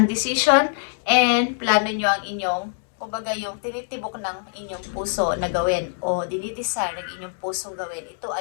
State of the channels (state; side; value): silent; right; 63 dB below the other